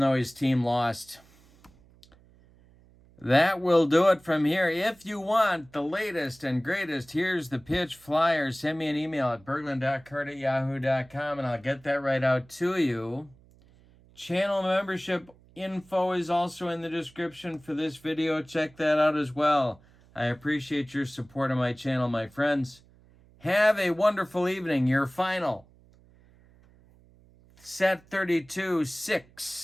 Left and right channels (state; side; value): noise; right; hum, 28 dB below the sound